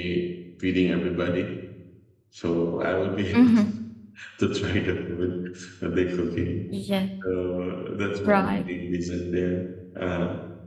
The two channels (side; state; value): both; identical; correlation 1.00